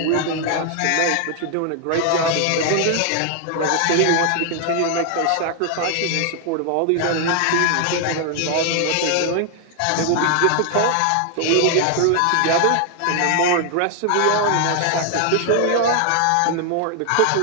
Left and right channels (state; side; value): different; both; correlation 0.00